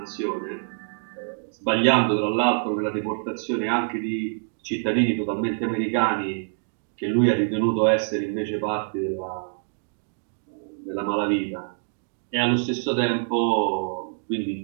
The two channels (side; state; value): left; silent; digital silence